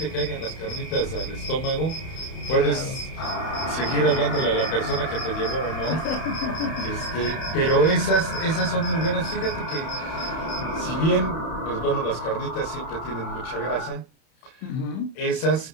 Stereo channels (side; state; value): right; late; 31 ms